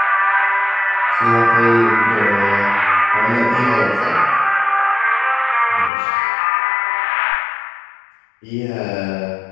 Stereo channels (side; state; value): right; drops out; at 5.9 s